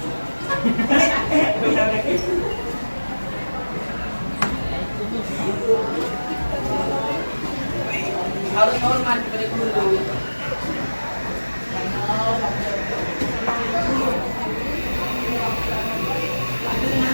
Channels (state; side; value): inverted; both; correlation -1.00